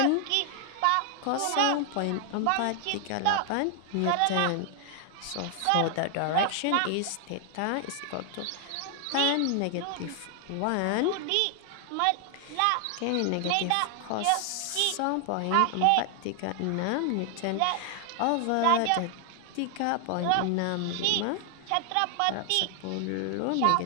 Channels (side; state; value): both; different; correlation 0.00